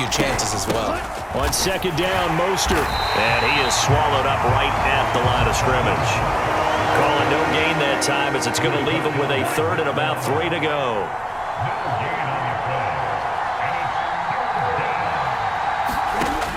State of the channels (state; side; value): identical; both; correlation 1.00